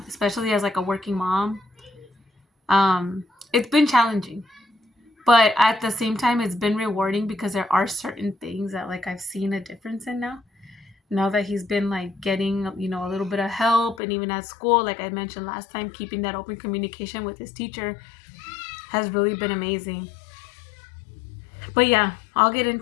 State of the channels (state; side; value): drops out; right; at 14.0 s